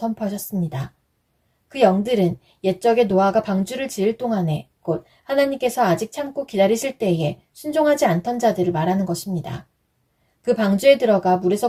그 영들은 옛적에 노아가 방주를 지을 동안에 곧 하나님께서 아직 참고 기다리실 때에 순종하지 않던 자들을 말하는 것입니다. 그 방주에 들어가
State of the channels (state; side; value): identical; both; correlation 1.00